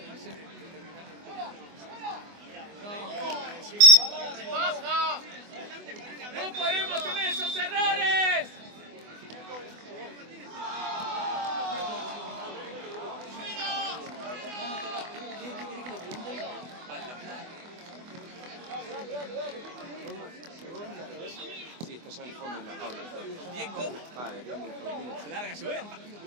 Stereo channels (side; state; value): left; late; 24 ms